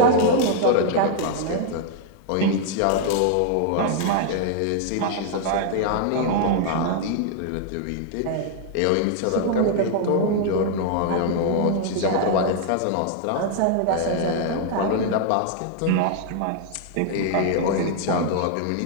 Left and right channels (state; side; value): different; both; correlation 0.00